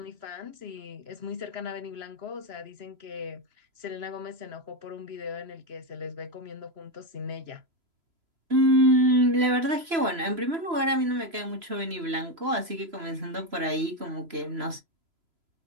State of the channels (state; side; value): late; left; 3.0 ms